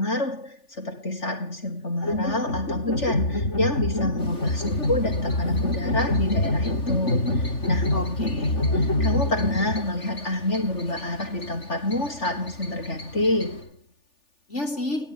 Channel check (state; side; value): late; right; 3.4 ms